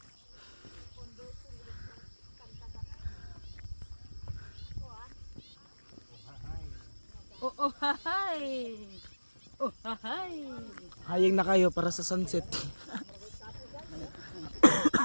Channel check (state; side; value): inverted; both; correlation -1.00